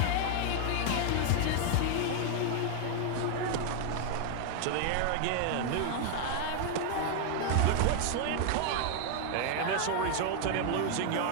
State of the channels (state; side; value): different; both; correlation 0.00